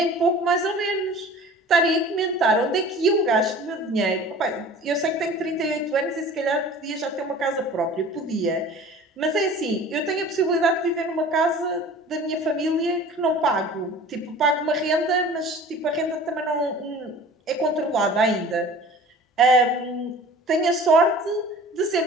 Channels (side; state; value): both; normal; correlation 0.43